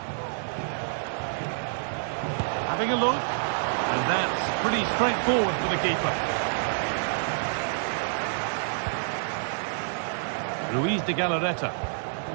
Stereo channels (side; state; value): left; silent; digital silence